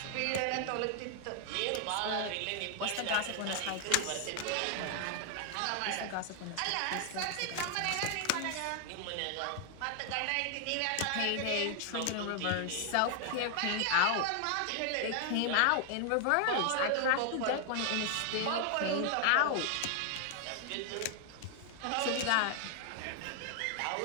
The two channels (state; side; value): different; both; correlation 0.00